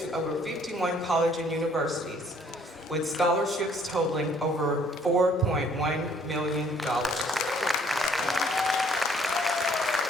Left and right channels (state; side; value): normal; both; correlation 0.61